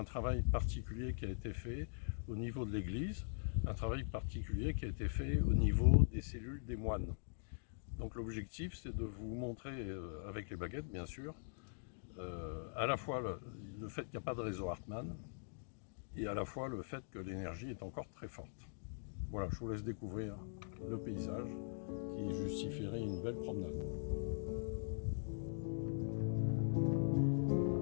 travail particulier qui a été fait au niveau de l'église, un travail particulier qui a été fait au niveau des cellules des moines. Donc l'objectif, c'est de vous montrer, avec les baguettes bien sûr, à la fois le fait qu'il n'y a pas de réseau Hartmann, et à la fois le fait que l'énergie est encore très forte. Voilà, je vous laisse découvrir le paysage qui justifierait une belle promenade.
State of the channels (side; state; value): right; silent; digital silence